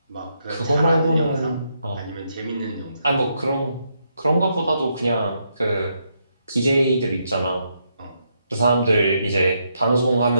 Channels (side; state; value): both; inverted; correlation -0.79